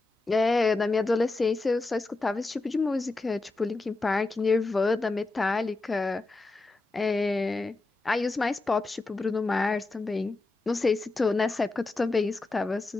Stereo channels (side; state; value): right; quieter; 3.3 dB